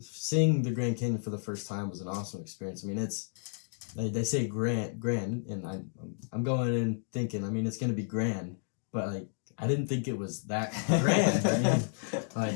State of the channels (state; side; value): silent; right; digital silence